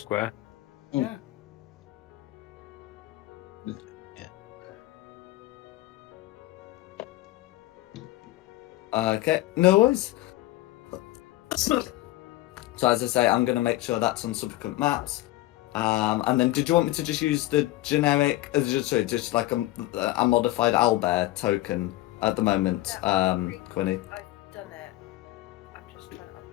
Yeah. Okay, no worries. So as I say, I'm going to make sure that's on subsequent maps. And then, did you want me to just use the generic, just like a modified owlbear token at the moment, Quinny? I've done it. I'm just trying to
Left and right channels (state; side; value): quieter; right; 17.1 dB